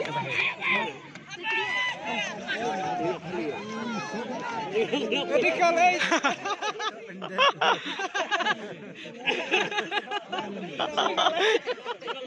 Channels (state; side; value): identical; both; correlation 1.00